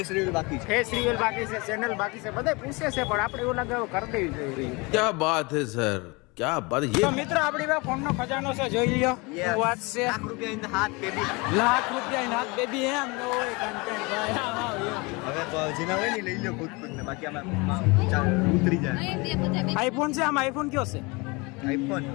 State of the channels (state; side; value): quieter; right; 26.7 dB